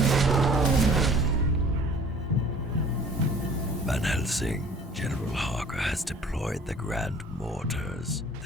Van Helsing, General Harker has deployed the Grand Mortars.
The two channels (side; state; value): both; normal; correlation 0.51